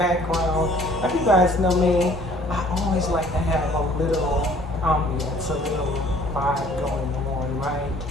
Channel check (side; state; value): both; normal; correlation 0.56